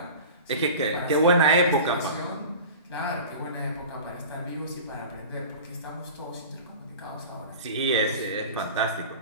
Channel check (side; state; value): both; inverted; correlation -0.36